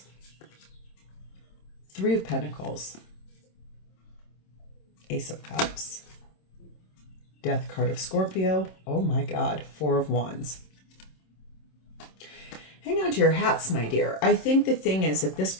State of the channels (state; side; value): late; right; 26 ms